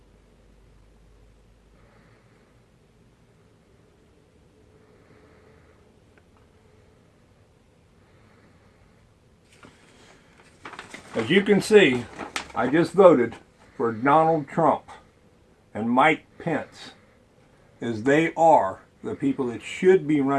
As you can see, I just voted for Donald Trump and Mike Pence is they are the people that should be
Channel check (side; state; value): both; identical; correlation 1.00